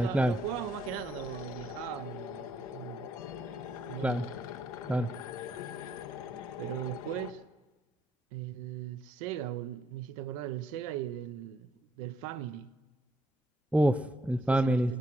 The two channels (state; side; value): normal; both; correlation 0.71